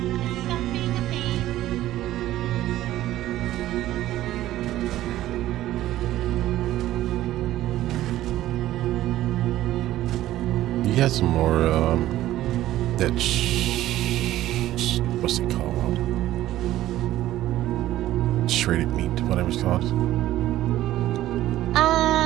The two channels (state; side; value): quieter; left; 14.3 dB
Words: Stop being a pain. you got some more that what's it called? Shredded meat, whatever it's called.